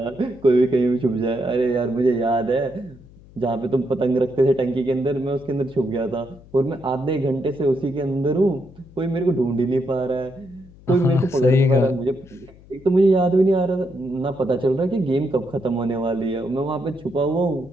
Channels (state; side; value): noise; left; hum, 23 dB below the sound